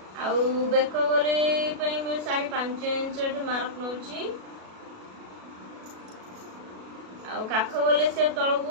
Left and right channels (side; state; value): left; late; 37 ms